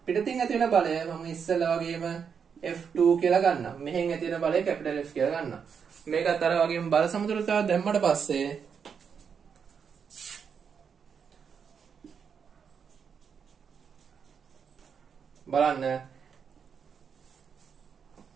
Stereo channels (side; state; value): left; quieter; 6.7 dB